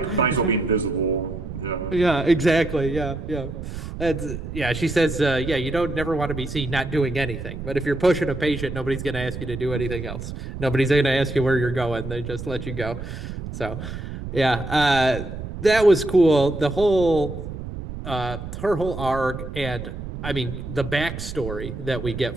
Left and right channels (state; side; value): noise; right; rumble, 8 dB below the sound